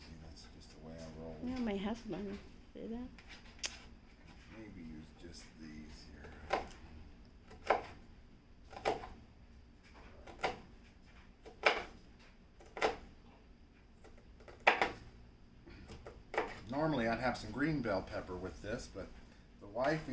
That's just the way I roll. Yeah, my husband. See that? Maybe use just these here. Normally I'd have some green bell pepper with this, but the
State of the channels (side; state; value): both; identical; correlation 1.00